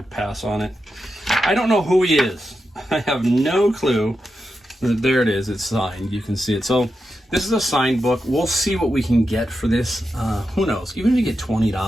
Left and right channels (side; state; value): both; normal; correlation 0.88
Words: pass on it. I don't know who he is. I have no clue. There it is. It's signed. You can see it. So this is a signed book. We'll see what we can get for this. Who knows? Even if you get